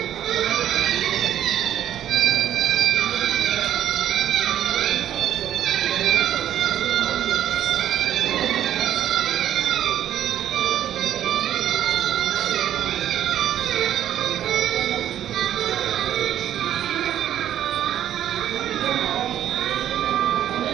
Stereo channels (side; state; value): left; quieter; 11.2 dB